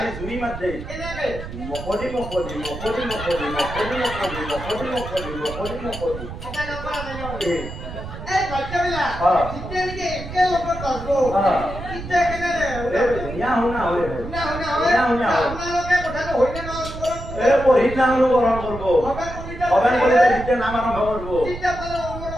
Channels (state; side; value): noise; right; rumble, 10 dB below the sound